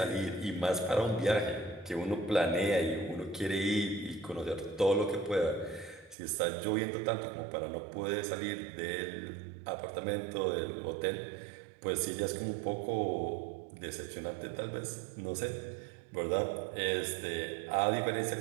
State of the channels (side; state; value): left; drops out; at 6.2 s